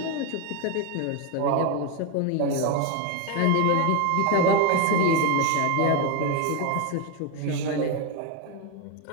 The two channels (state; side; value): different; both; correlation 0.02